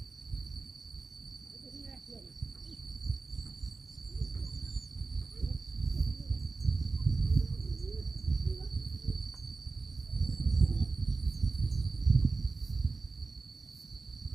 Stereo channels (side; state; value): left; quieter; 4.0 dB